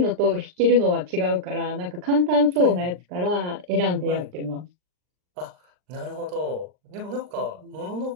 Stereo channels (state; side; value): late; left; 39 ms